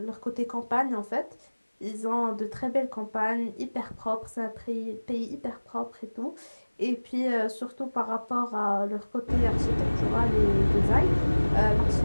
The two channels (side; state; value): both; inverted; correlation -1.00